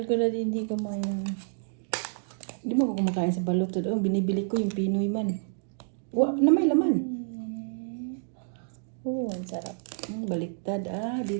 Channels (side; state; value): left; silent; digital silence